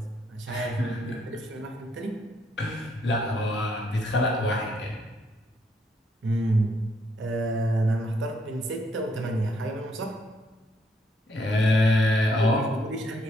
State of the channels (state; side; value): normal; both; correlation 0.72